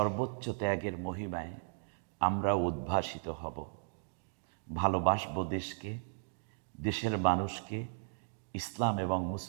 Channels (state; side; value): silent; left; digital silence